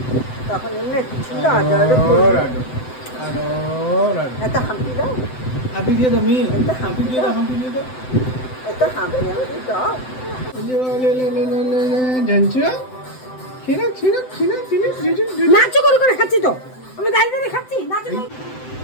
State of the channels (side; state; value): right; late; 7.8 ms